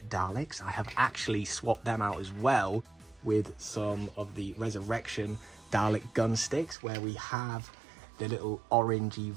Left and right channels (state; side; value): drops out; left; at 6.8 s